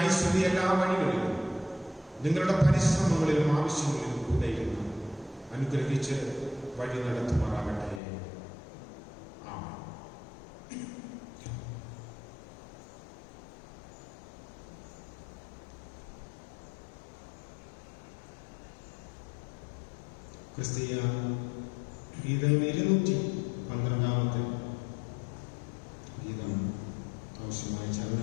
എല്ലാ വഴികളിലും നിങ്ങളുടെ പരിശ്രമങ്ങളിലും ആവശ്യങ്ങളിലും കൂടെ ഇരുന്ന് അനുഗ്രഹിച്ച് വഴി നടത്തുമാറാകട്ടെ. ആമേൻ. ക്രിസ്തീയ ഗീതങ്ങൾ 212 ഗീതം ആവശ്യമായ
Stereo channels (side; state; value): right; drops out; at 8.0 s